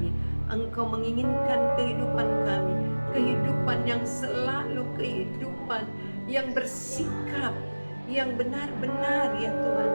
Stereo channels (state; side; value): inverted; both; correlation -1.00